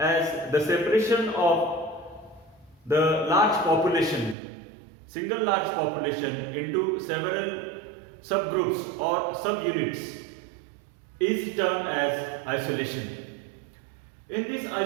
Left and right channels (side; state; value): left; drops out; at 4.4 s